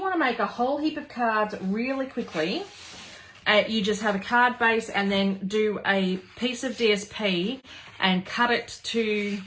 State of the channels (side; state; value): both; identical; correlation 1.00